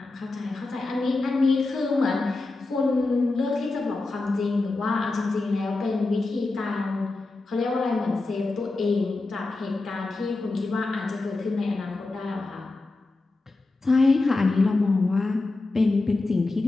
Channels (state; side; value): quieter; right; 3.3 dB